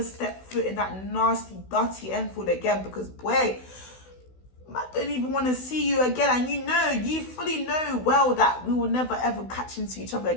step foot in that nasty, dirty Enfield again, because boy, I don't even want to see you again. And you fully know well that we will never ever catch into each other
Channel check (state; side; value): late; right; 16 ms